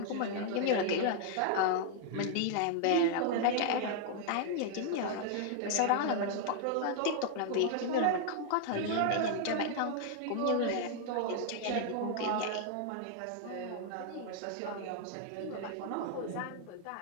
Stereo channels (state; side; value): different; both; correlation -0.01